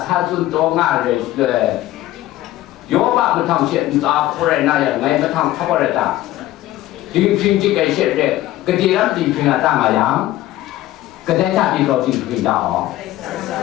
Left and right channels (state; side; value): quieter; right; 15.1 dB